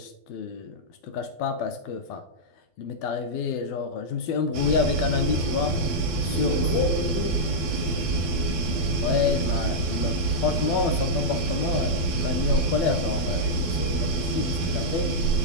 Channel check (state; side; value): late; right; 12 ms